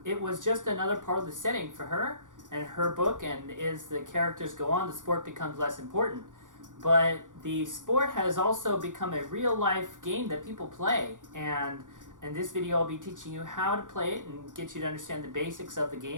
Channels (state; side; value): late; left; 0.87 ms